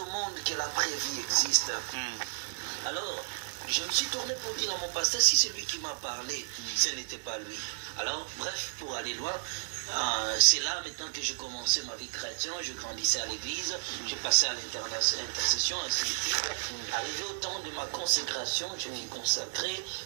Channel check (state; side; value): silent; left; digital silence